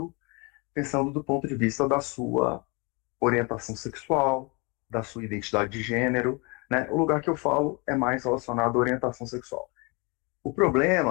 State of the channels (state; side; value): quieter; right; 29.9 dB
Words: pensando do ponto de vista da sua orientação sexual, da sua identidade de gênero, né? O lugar que eu falo é mais relacionado à orientação sexual. O